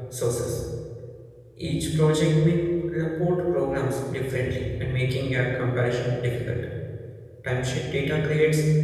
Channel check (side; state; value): both; identical; correlation 1.00